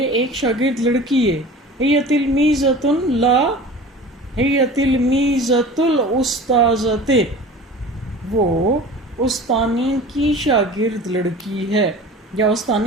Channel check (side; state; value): both; normal; correlation 0.39